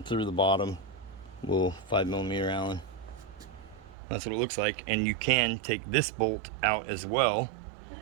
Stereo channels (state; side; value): drops out; left; at 4.0 s